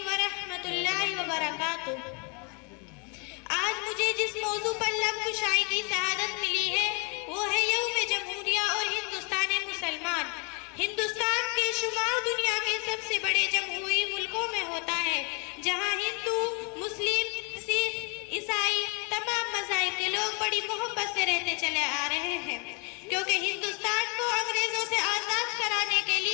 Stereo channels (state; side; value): quieter; right; 34.2 dB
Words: ورحمۃ اللہ وبرکاتہ۔ آج مجھے جس موضوع پر لب کشائی کی سعادت ملی ہے وہ ہے یوم جمہوریہ اور ہندوستان مسلمان۔ ہندوستان کے شمار دنیا کے سب سے بڑے جمہوری ملکوں میں ہوتا ہے، جہاں ہندو، مسلم، سکھ، عیسائی، تمام مذاہب کے لوگ بڑی محبت سے رہتے چلے آ رہے ہیں، کیونکہ ہندوستان کو انگریزوں سے آزاد کرانے کے